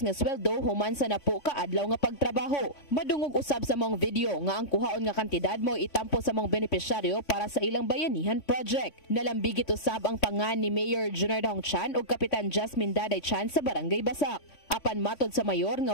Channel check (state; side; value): late; right; 3.5 ms